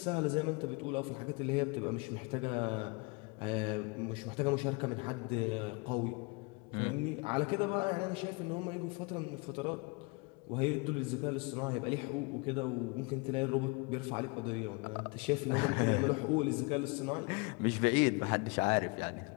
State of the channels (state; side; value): quieter; right; 28.7 dB